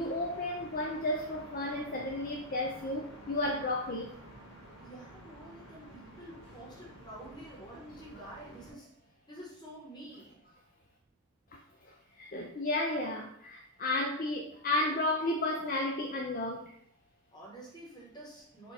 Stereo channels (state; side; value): normal; both; correlation -0.03